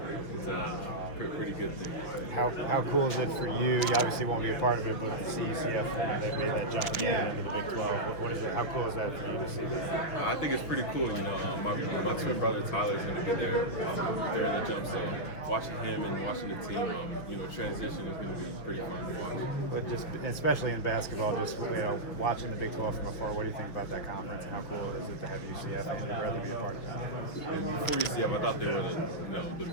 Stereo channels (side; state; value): right; late; 6.4 ms